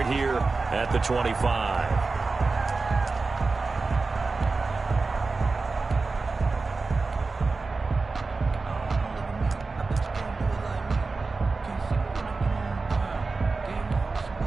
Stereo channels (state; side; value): quieter; left; 3.9 dB